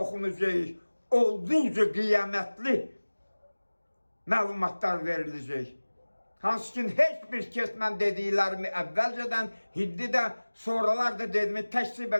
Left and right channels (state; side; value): inverted; both; correlation -1.00